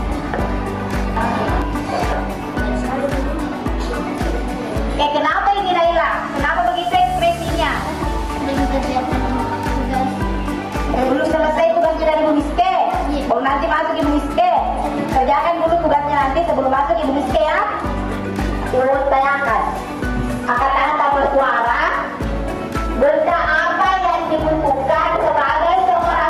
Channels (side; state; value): both; identical; correlation 1.00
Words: Kenapa ini Naila? Kenapa begitu ekspresinya? Belum selesai tugas dari Bu Miske. Oh, nanti masuk Ibu Miske. Kerjakan dulu tugasnya nanti sebelum masuk Ibu Miske ya. Ibu tanyakan. Angkat tangan tanpa suara. Benda apa yang dibutuhkan sebagai